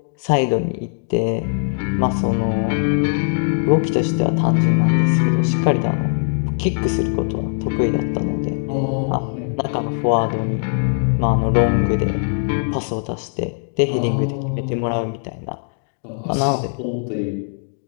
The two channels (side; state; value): right; silent; digital silence